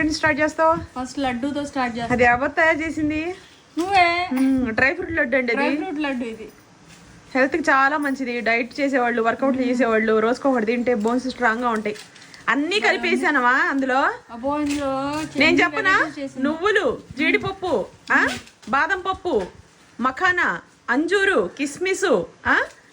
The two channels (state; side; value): identical; both; correlation 1.00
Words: నుంచి స్టార్ట్ చేస్తావు? ఫస్ట్ లడ్డూతో స్టార్ట్ చేస్తావు. అది ఎవరు తయారు చేసింది? నువ్వే. డ్రై ఫ్రూట్ లడ్డు అండి. డ్రై ఫ్రూట్ లడ్డు ఇది హెల్త్ కి చాలా మంచిది. డైట్ చేసేవాళ్ళు, వర్కౌట్లు చేసేవాళ్ళు రోజుకొకటి తింటే బోన్స్ స్ట్రాంగ్ గా ఉంటాయి. అన్ని కలిపేసానవా అందులో. నేను చెప్పనా, నువ్వులు, జీడిపప్పు, బాదం పప్పు, మఖానా, అంజూరు, కిస్మిసు,